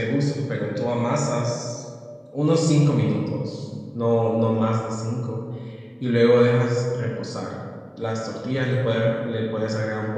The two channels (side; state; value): both; identical; correlation 1.00